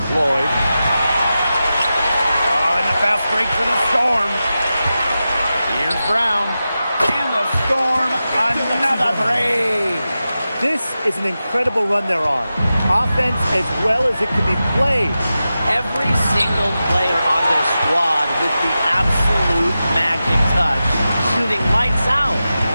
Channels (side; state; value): both; inverted; correlation -0.92